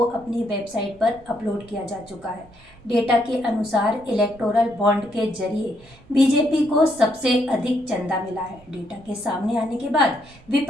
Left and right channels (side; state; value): both; normal; correlation 0.74